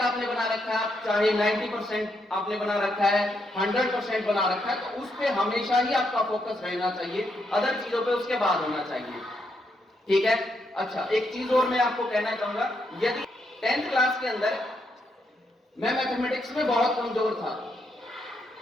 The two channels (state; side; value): normal; both; correlation 0.78